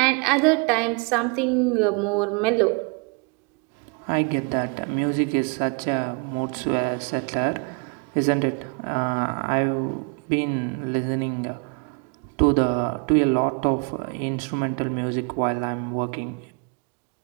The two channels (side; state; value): left; quieter; 34.4 dB